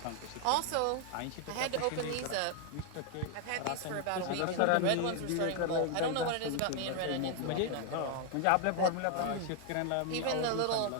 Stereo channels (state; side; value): different; both; correlation 0.00